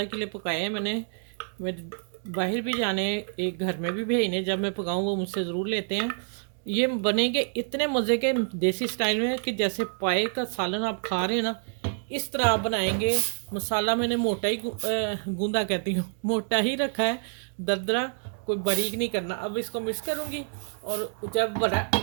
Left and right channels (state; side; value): silent; left; 60 dB below the other